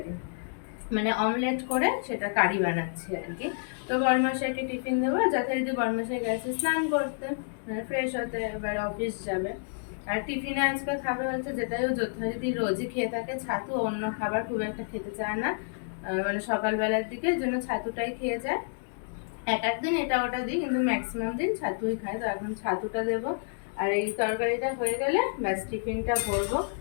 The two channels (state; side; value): silent; right; digital silence